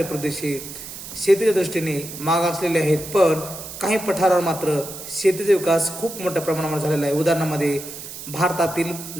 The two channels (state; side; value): noise; right; hiss, 11 dB below the sound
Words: प्रदेश हे शेतीच्या दृष्टीने मागासलेले आहेत. पण काही पठारावर मात्र शेतीचा विकास खूप मोठ्या प्रमाणावर झालेला आहे. उदाहरणामध्ये भारतातील